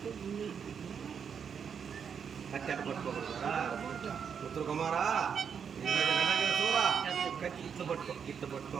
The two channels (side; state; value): left; quieter; 7.1 dB